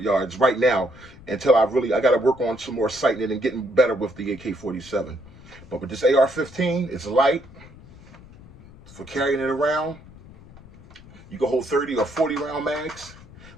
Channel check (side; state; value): left; noise; rumble, 20 dB below the sound